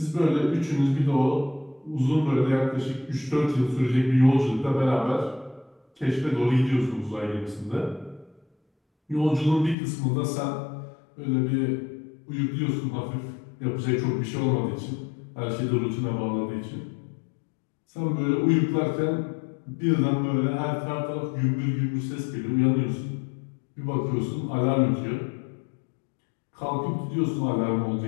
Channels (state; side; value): drops out; right; at 9.8 s